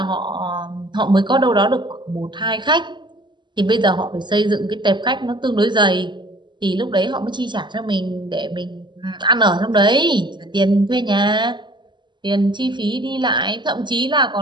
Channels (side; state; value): left; late; 0.22 ms